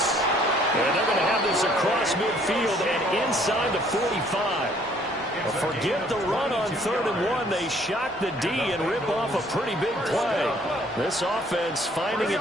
And they're going to have this across midfield and inside the 45. Forget the run on 3rd and 1. They shock the D and rip off a pretty big play. This offense finding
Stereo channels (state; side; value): normal; both; correlation 0.61